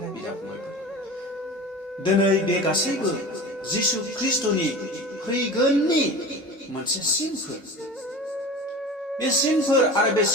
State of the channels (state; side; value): normal; both; correlation 0.34